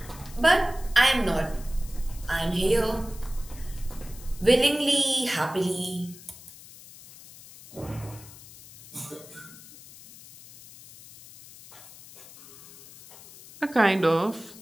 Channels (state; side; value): noise; left; hiss, 19 dB below the sound